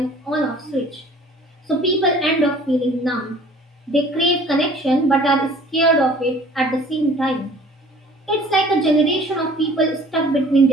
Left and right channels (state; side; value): normal; both; correlation 0.51